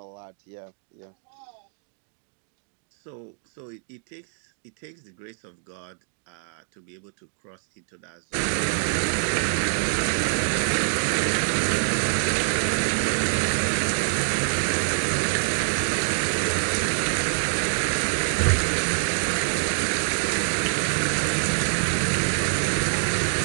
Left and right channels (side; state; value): left; silent; digital silence